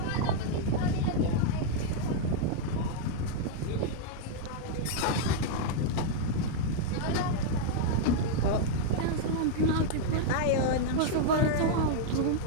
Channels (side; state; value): both; different; correlation -0.01